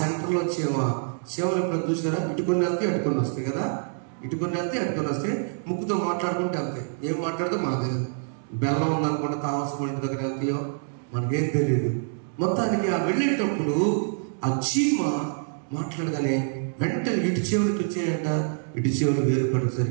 చీమలు ఎప్పుడు చూసారా? ఇటుకొని వెళ్తే అటుకొని వస్తాయి కదా. ఇటుకొని వెళ్తే అటుకొని వస్తే ముక్కుతో మాట్లాడుకుంటే వెళ్తాయి. ఏం మాట్లాడితే మనకు తెలియదు. బెల్లం ఉందనుకుంటే కావాల్సిన ఇంటి దగ్గర వెళ్తాయో మనకేం తెలియదు. మొత్తానికి ఆ వెళ్ళేటప్పుడు ఆ చీమ మాట్లాడగానే వెంటనే ఇటు చీమలకు వచ్చాయంట. ఇటు చీమలు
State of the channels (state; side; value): silent; left; digital silence